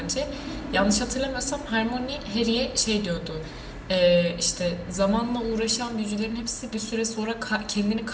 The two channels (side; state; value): both; identical; correlation 1.00